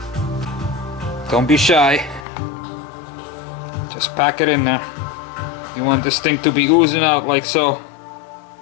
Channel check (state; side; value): drops out; right; at 2.2 s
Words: Don't be shy. Just pack it in there. You want this thing to be oozing out like so.